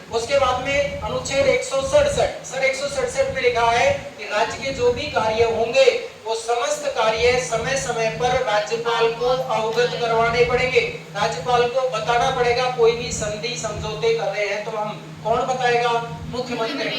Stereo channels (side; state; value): both; identical; correlation 1.00